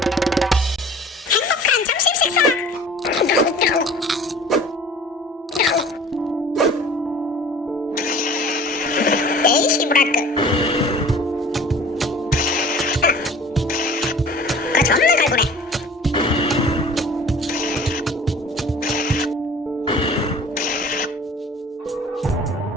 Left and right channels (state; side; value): normal; both; correlation 0.45